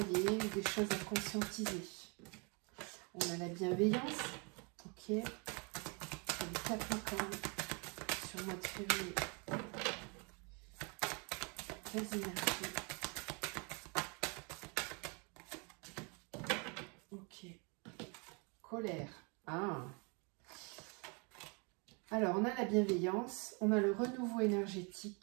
ou des choses à conscientiser? On a la bienveillance. Ok. Les Capricornes. Sur le mois de février. Quelles énergies? Ok. colère. Ah. Alors, on a la bienveillance, on a le renouveau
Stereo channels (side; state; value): left; quieter; 33.1 dB